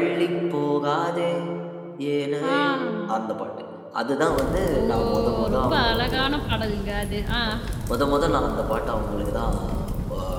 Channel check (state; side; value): identical; both; correlation 1.00